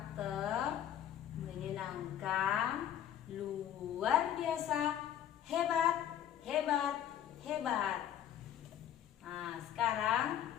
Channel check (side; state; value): right; quieter; 10.5 dB